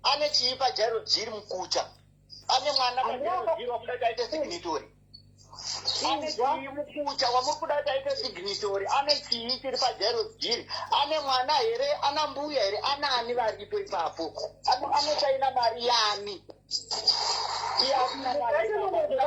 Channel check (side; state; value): both; identical; correlation 1.00